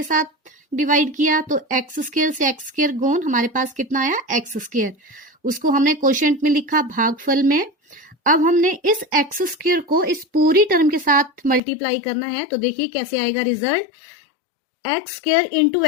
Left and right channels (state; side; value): drops out; right; at 11.6 s